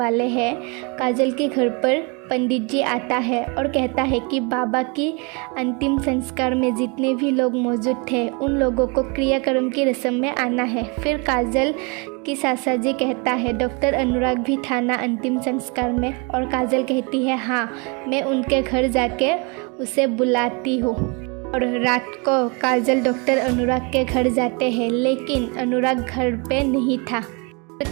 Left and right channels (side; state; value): left; quieter; 31.6 dB